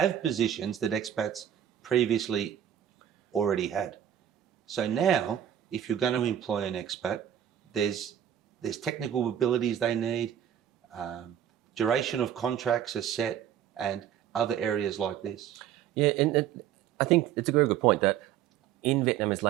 positions that expats previously already had. So now, if you're going to employ an expat, there's technical abilities they need, duration of contracts are set, and other areas like this. Yeah, and I think it's a very good point that in Vietnamese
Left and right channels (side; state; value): left; quieter; 10.1 dB